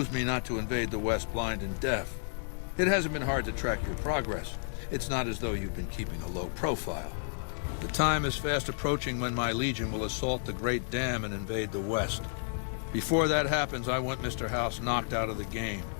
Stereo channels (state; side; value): silent; right; digital silence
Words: me not to invade the West blind and deaf. It hasn't been hard to track your progress. It's not as though you've been keeping a low profile. The time is fast approaching when my Legion will assault the Great Dam and invade the West. Before that happens, I want Mr. House knocked out of the game.